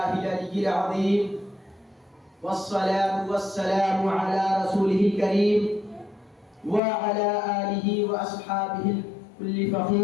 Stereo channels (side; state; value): right; drops out; at 6.8 s